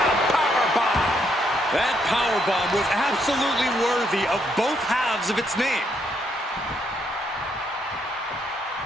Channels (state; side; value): normal; both; correlation 0.74